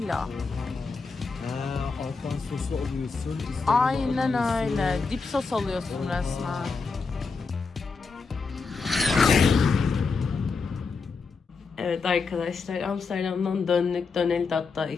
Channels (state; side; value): quieter; right; 4.6 dB